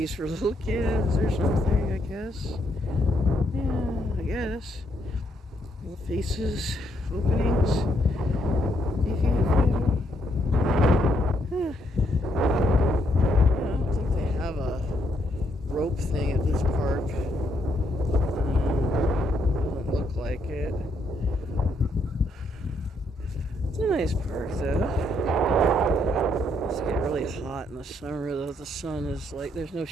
for little kids or something? I guess. Yeah, I guess. Little faces, openings. Fifi and Fido. Huh. I don't think they have a rope thing at this park. Doesn't look like it. It's a nice park, though. It's getting really hot in the summer, though. The sun is like, there's no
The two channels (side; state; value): both; normal; correlation 0.74